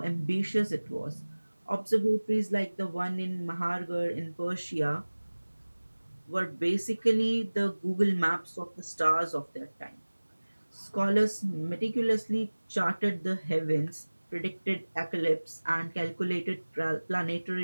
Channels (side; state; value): both; inverted; correlation -1.00